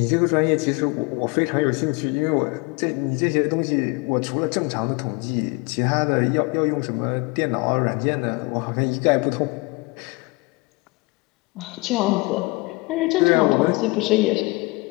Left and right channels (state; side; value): quieter; right; 26.3 dB